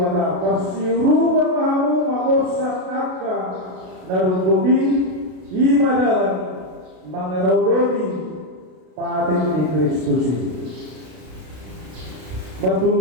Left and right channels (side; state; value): left; late; 32 ms